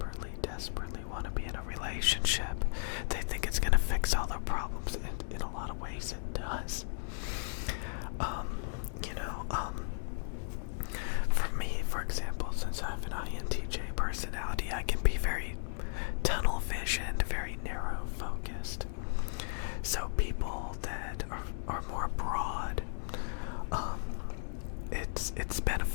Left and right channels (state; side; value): silent; right; digital silence